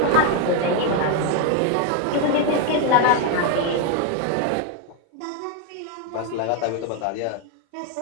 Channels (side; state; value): both; different; correlation 0.01